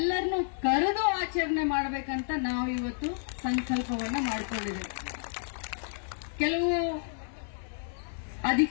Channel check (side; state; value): right; silent; digital silence